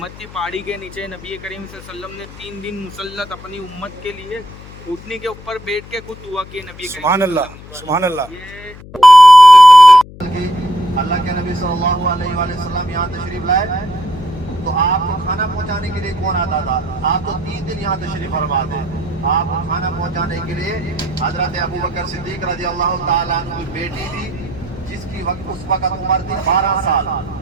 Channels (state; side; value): noise; left; hum, 18 dB below the sound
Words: کی پہاڑی کے نیچے نبی کریم صلی اللہ علیہ وسلم نے 3 دن مسلط اپنی امت کے لیے اٹھنے کے اوپر بیٹھ کے خود دعا کی نبی کریم سبحان اللہ، سبحان اللہ۔ یہ اللہ کے نبی صلی اللہ علیہ وآلہ وسلم یہاں تشریف لائے تو آپ کو کھانا پہنچانے کے لیے کون آتا تھا؟ آپ تو 3 دن یہاں تشریف فرما تھے۔ آپ کو کھانا پہنچانے کے لیے حضرت ابو بکر صدیق رضی اللہ تعالیٰ عنہ کی بیٹی تھی، جس کی اس وقت عمر تھی 12 سال۔